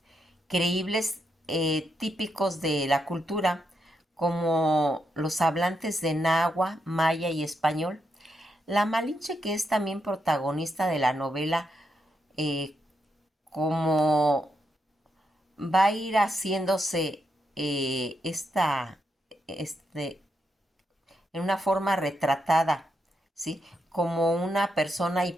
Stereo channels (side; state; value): both; normal; correlation 0.82